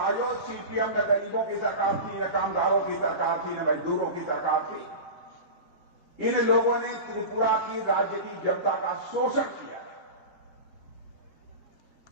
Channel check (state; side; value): late; right; 5.6 ms